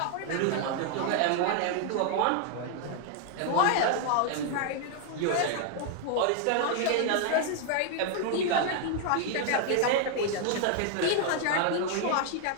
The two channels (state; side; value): different; both; correlation 0.00